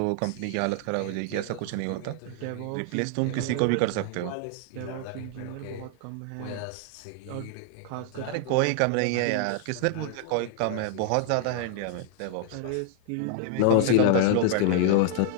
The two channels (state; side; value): different; both; correlation 0.00